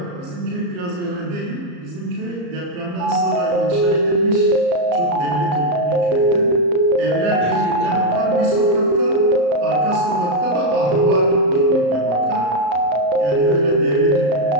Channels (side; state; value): left; late; 34 ms